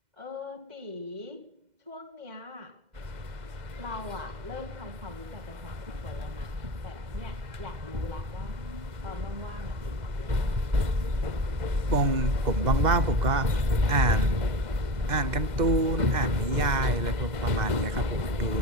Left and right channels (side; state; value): left; late; 2.0 ms